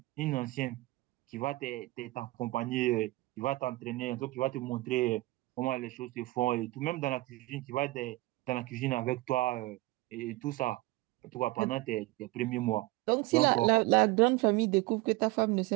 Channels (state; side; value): quieter; left; 20.4 dB